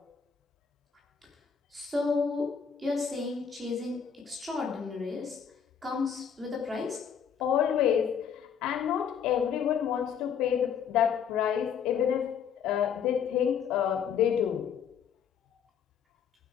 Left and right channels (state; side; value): quieter; right; 7.6 dB